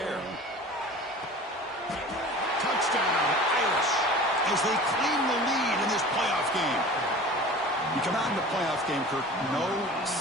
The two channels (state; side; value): normal; both; correlation 0.40